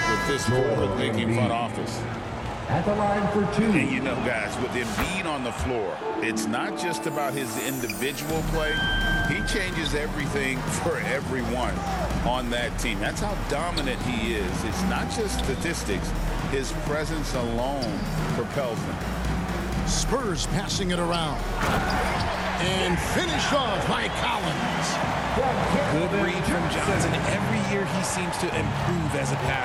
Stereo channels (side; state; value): both; identical; correlation 1.00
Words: with this forward-thinking front office. At the line for 2. And you know, guys, with Embiid on the floor, it's not just about his individual play. He changes everything for everyone on that team. That's how dominant he is. It's not just statistics. His presence alone propels them. Spurs passing it around. And finished off by Collins. Good read from Johnson. Every year he seems to improve as a